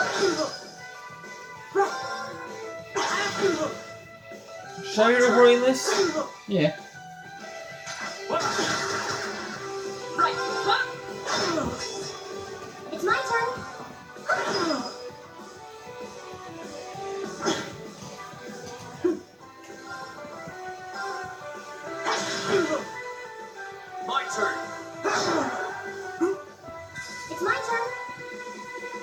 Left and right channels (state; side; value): identical; both; correlation 1.00